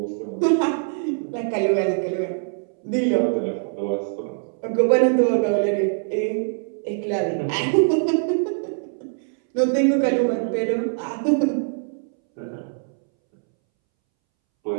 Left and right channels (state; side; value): silent; left; 63 dB below the other